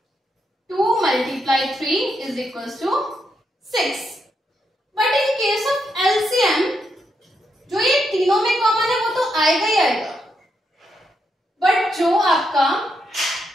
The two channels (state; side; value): normal; both; correlation 0.81